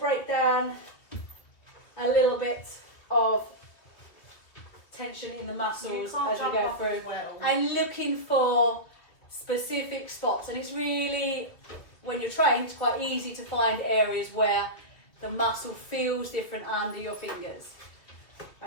down a little bit of tension in the muscles as we go through, and looking for specific spots. And it's really, when you're trained, it's quite easy to find areas where the muscle feels different under your fingers,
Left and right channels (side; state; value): right; late; 2.6 ms